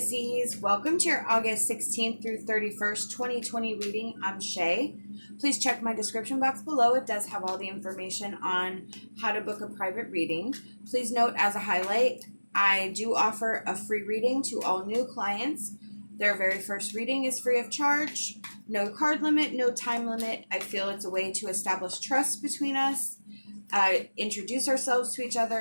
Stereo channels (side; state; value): both; inverted; correlation -1.00